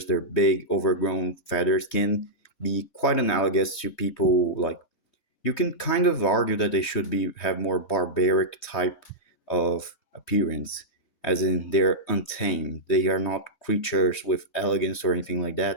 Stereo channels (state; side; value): late; right; 3.2 ms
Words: their big overgrown feathers can be quite analogous to people like you can kind of argue that they should be have more barbaric type of appearance, as in they're untamed. They are not creatures with elegance or anything like